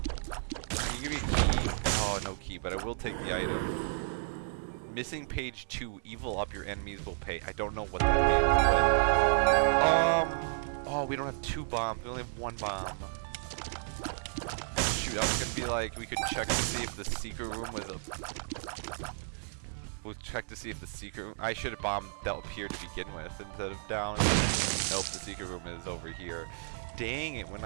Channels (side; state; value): left; silent; digital silence